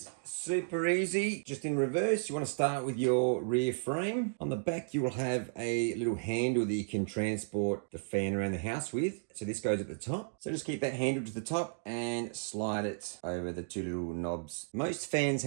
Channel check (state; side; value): silent; left; digital silence